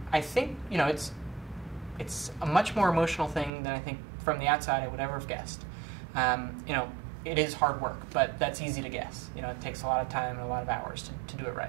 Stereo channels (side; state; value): left; drops out; at 3.5 s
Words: I think it's a much more emotional thing than I think from the outside I would ever have guessed. It is hard work, but that's easy to guess. It takes a lot of time and a lot of hours to do it right.